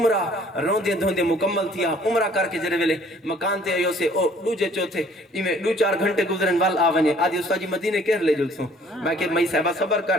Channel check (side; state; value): both; normal; correlation 0.57